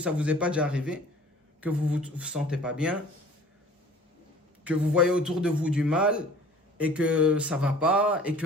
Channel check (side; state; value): both; normal; correlation 0.48